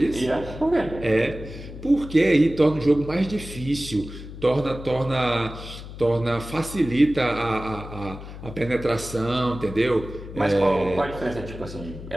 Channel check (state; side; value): noise; left; hum, 12 dB below the sound